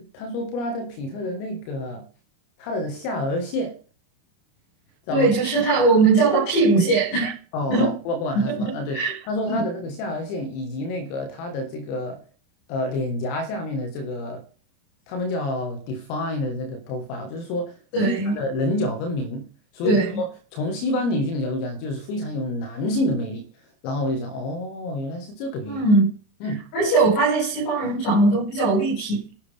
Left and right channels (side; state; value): right; late; 29 ms